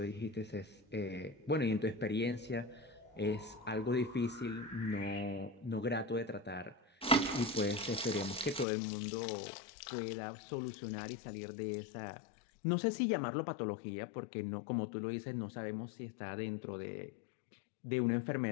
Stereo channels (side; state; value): right; drops out; at 8.7 s